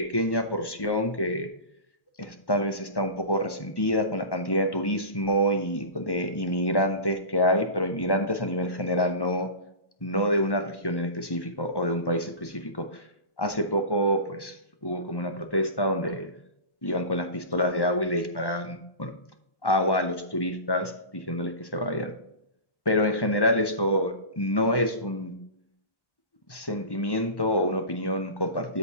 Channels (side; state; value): right; late; 1.1 ms